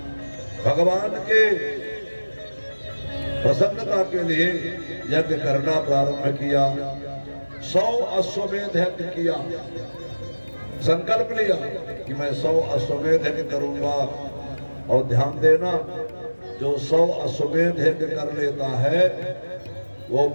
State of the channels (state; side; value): inverted; both; correlation -1.00